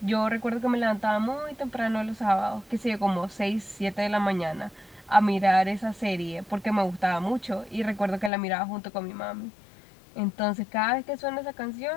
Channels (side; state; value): right; drops out; at 8.3 s